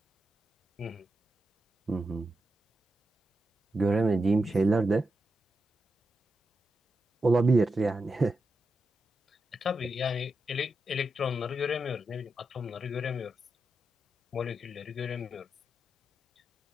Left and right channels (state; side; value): normal; both; correlation 0.88